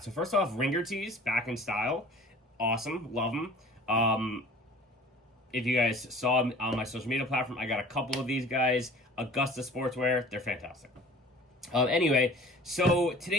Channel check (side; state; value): both; normal; correlation 0.46